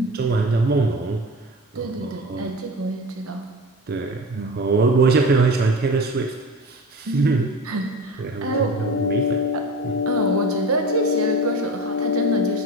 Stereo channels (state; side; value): normal; both; correlation 0.31